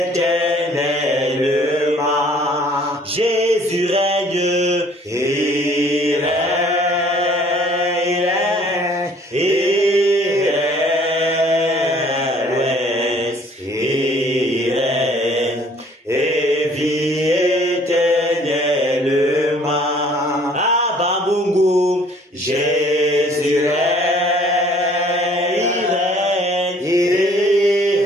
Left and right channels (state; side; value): normal; both; correlation 0.57